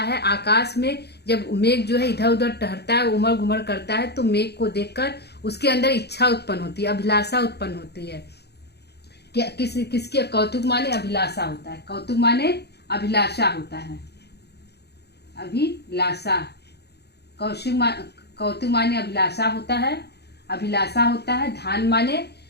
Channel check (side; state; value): right; late; 0.48 ms